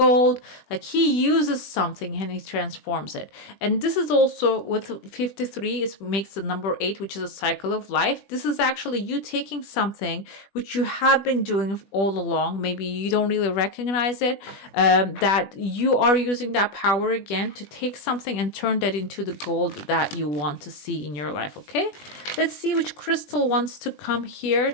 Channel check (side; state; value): right; late; 20 ms